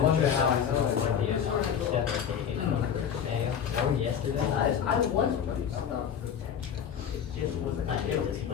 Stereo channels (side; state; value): right; quieter; 8.2 dB